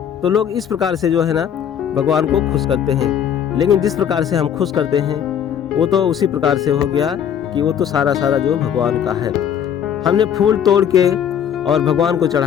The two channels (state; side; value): quieter; right; 8.8 dB